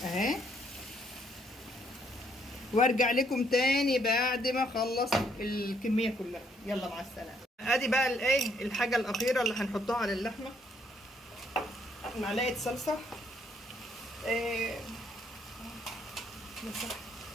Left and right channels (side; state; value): both; normal; correlation 0.69